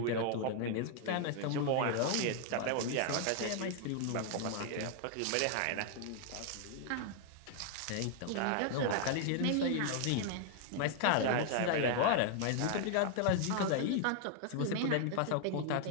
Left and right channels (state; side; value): different; both; correlation 0.00